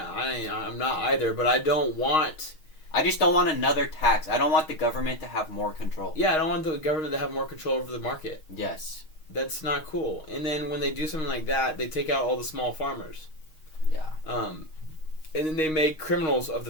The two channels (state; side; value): late; right; 6.4 ms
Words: I'm not either, but I don't want... I just don't want another tax. I don't want the government to have more control. Yeah, I don't want the government to have more control over the market. Yes. That's not cool. And then when they do something like that, they take out all the small farmers. Yeah. And then they make criminals of